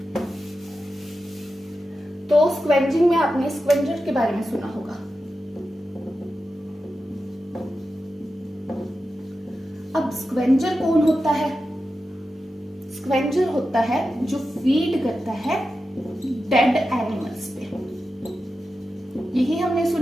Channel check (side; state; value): both; normal; correlation 0.91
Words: तो स्क्वेंजिंग में आपने स्क्वेंजर के बारे में सुना होगा। अब स्क्वेंजर कौन होता है, स्क्वेंजर होता है जो फीड करता है डेड एनिमल्स पे, यही हमने